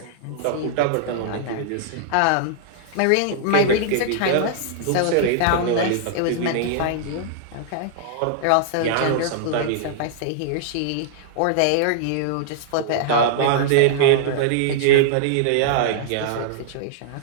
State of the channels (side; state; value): both; different; correlation -0.01